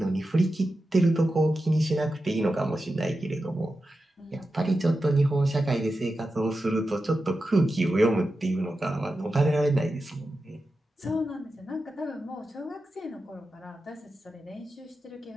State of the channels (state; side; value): normal; both; correlation 0.91